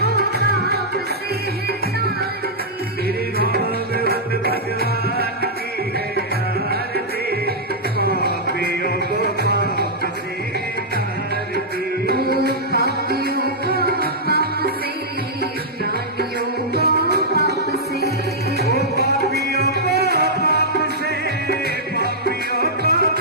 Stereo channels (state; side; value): normal; both; correlation -0.09